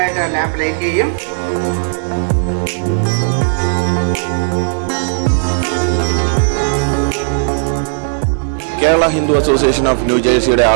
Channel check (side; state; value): left; silent; digital silence